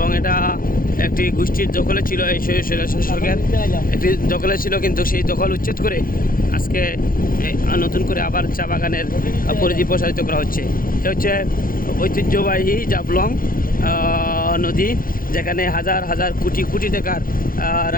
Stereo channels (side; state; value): right; late; 0.41 ms